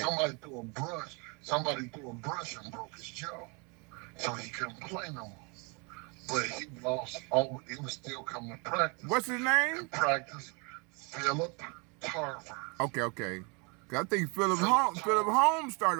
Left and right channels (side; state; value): left; quieter; 31.9 dB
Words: Somebody threw a brush and broke his jaw. So he couldn't play no more. But he lost he was still coming to practice. What's his name? In practice, Philip Tarver. Okay. 'Cause I think Philip Holmes